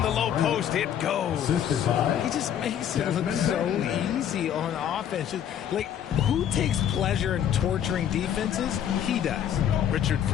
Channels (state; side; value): quieter; right; 9.7 dB